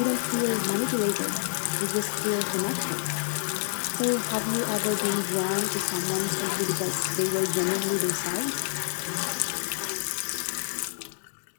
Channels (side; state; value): right; silent; digital silence